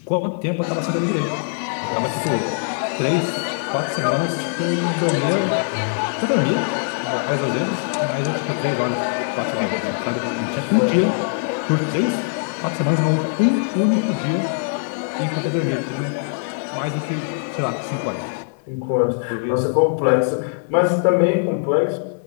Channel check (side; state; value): right; silent; 63 dB below the other